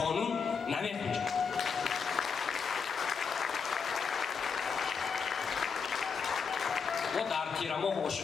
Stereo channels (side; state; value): right; quieter; 5.8 dB